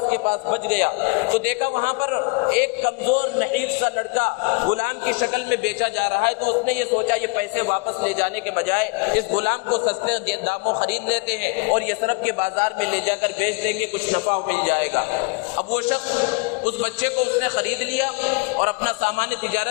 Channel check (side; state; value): right; quieter; 29.0 dB